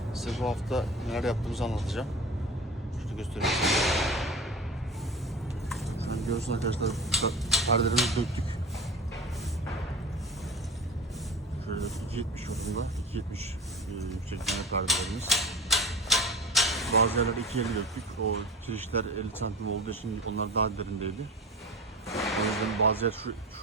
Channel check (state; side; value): normal; both; correlation 0.33